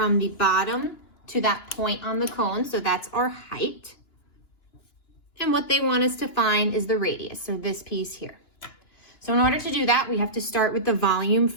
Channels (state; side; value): late; right; 2.9 ms